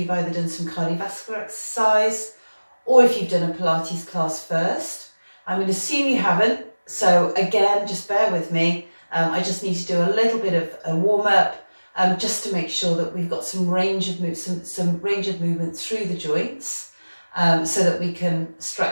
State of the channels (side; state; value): both; inverted; correlation -1.00